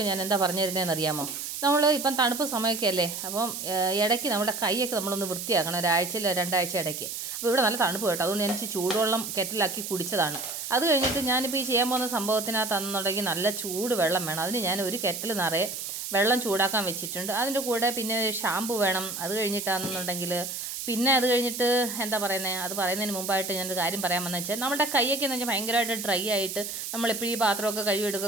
ഞാൻ എന്താ പറഞ്ഞു തരുന്നതെന്ന് അറിയാമോ? നമ്മൾ ഇപ്പം തണുപ്പ് സമയമൊക്കെ അല്ലേ, അപ്പം ഇടയ്ക്ക് നമ്മുടെ കൈയൊക്കെ നമ്മളൊന്ന് വൃത്തിയാക്കണം, ഒരാഴ്ചയിൽ രണ്ടാഴ്ച ഇടയ്ക്ക്. അപ്പോൾ ഇവിടെ നല്ല തണുപ്പ് കേട്ടോ, അതുകൊണ്ട് ഞാൻ ചൂടുവെള്ളം കെറ്റിലാക്കി കുടിച്ചതാണ്. അത് കഴിഞ്ഞിട്ട് ഞാനിപ്പോൾ ഈ ചെയ്യാൻ പോകുന്ന സംഭവത്തിനകത്താണെന്നുണ്ടെങ്കിൽ നല്ല ചൂട് വെള്ളം വേണം. അതിന് ഞാൻ ഒരു കെറ്റിൽ നിറയെ വെള്ളം ചൂടാക്കാൻ വെച്ചിട്ടുണ്ട്. അതിൻ്റെ കൂടെ പിന്നെ ഷാമ്പു വേണം. അത് കഴിഞ്ഞിട്ടാണെന്നുണ്ടെങ്കിൽ പിന്നെ അത് കഴിഞ്ഞിട്ട് എന്താ പറയുന്നത്, അത് പറയുന്നതിന് മുമ്പായിട്ട് ഞാനൊരു കാര്യം പറയാൻ വന്നത് വെച്ചാൽ, നമ്മുടെ കൈയൊക്കെ എന്ന് വെച്ചാൽ ഭയങ്കരമായിട്ട് ഡ്രൈ ആയിട്ട് നമ്മളെപ്പോഴും ഈ പാത്രമൊക്കെ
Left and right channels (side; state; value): right; noise; hiss, 6 dB below the sound